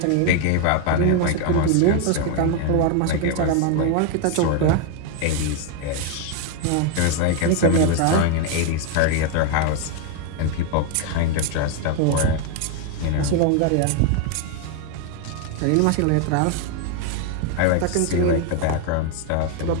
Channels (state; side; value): different; both; correlation 0.01